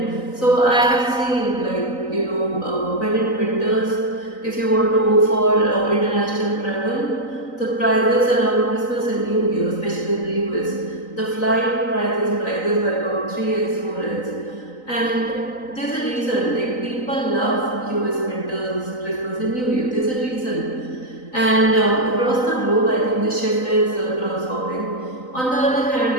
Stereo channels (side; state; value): right; late; 3.9 ms